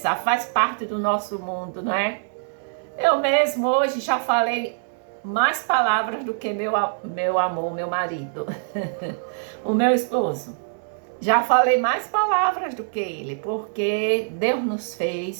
faz parte do nosso mundo, não é? Eu mesmo hoje já falei mais palavras do que meu amor, meu marido, o meu esposo. Já falei mais palavras do que ele, porque Deus nos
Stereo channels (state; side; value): silent; left; digital silence